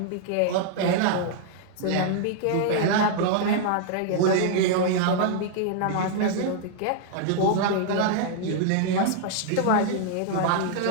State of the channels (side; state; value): both; different; correlation -0.01